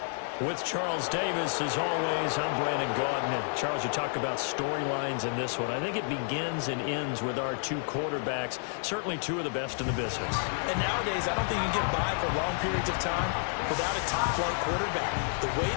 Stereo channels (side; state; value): right; silent; 57 dB below the other